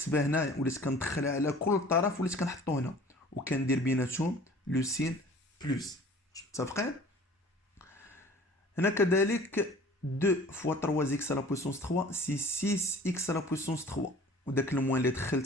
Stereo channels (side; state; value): both; normal; correlation 0.47